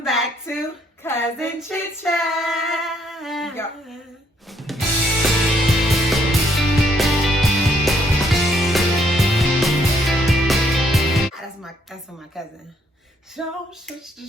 back to Cousin Chit Chat. Yep. That's my cousin. Show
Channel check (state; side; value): normal; both; correlation 0.70